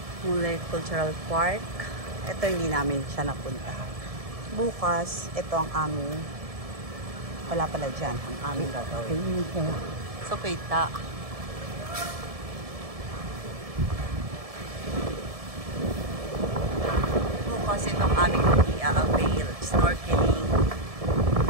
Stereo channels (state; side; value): late; left; 1.7 ms